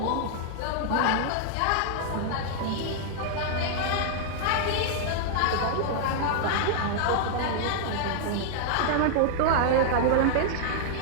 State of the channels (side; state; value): both; different; correlation -0.01